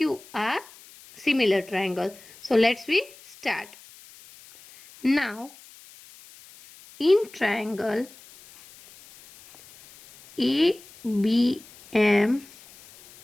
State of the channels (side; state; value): left; noise; hiss, 22 dB below the sound